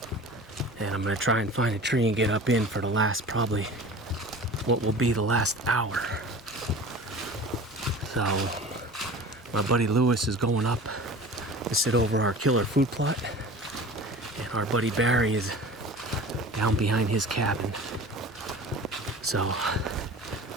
and I'm gonna try and find a tree and get up in for the last, probably what will be the last hour. So my buddy Lewis is going up to sit over our killer food plot, and our buddy Barry is down behind his cabin. So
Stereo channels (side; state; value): both; normal; correlation 0.39